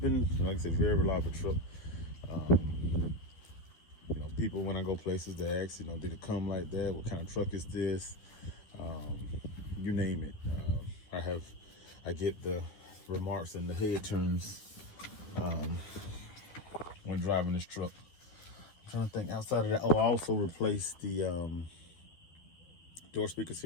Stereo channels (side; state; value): right; late; 12 ms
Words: like I said, very reliable truck. You know, people when I go places, they ask, you know, did it come like that? What kind of truck is this? You name it. I get the remarks and the head turns when driving this truck. I'm trying to think outside of that. Oh, I also replaced the door speakers